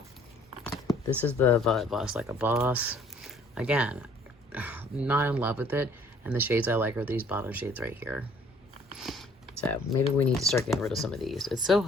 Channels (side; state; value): both; normal; correlation 0.58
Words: This is the Violet Voss Like a Boss. Again, not in love with it. And the shades I like are these bottom shades right here. So maybe we need to start getting rid of some of these. It's so